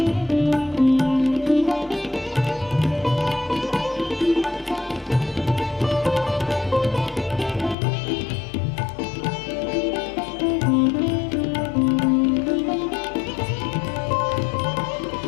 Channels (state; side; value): drops out; right; at 7.8 s